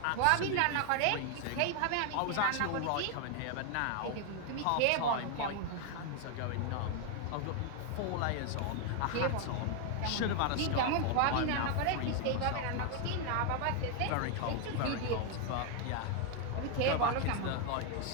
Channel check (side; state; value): both; different; correlation 0.00